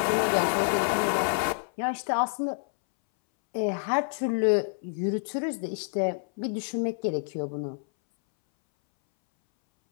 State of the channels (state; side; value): silent; right; 59 dB below the other